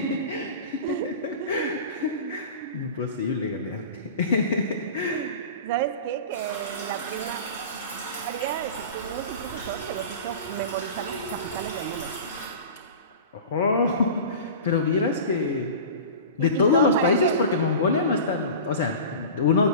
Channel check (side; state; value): both; inverted; correlation -0.34